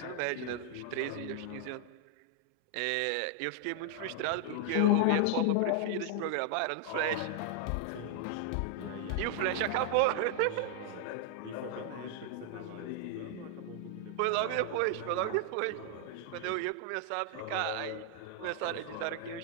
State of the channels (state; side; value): different; both; correlation 0.00